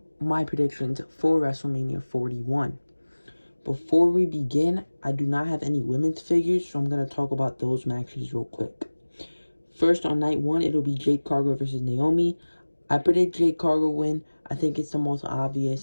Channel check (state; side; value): inverted; both; correlation -1.00